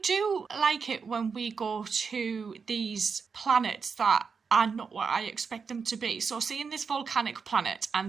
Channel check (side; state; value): left; quieter; 5.6 dB